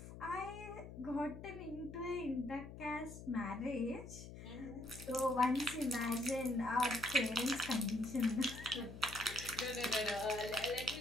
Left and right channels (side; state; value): left; noise; hum, 12 dB below the sound